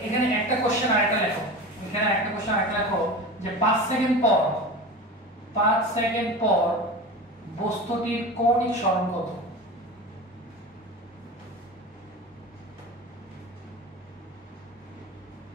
এখানে একটা কোশ্চেন আরেকটা লেখো। এখানে একটা কোশ্চেন আরেকটা লেখো যে 5 সেকেন্ড পর বস্তুটির কৌণিক সরণ কত?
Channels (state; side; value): normal; both; correlation 0.30